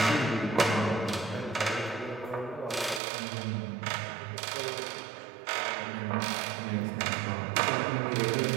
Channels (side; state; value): left; drops out; at 3.0 s